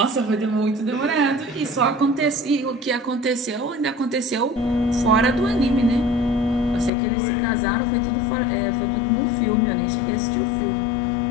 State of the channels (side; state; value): right; drops out; at 6.9 s